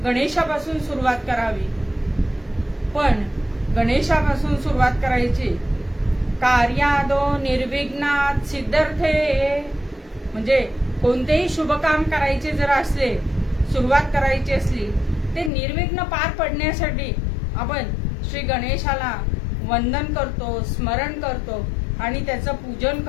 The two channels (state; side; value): drops out; right; at 15.5 s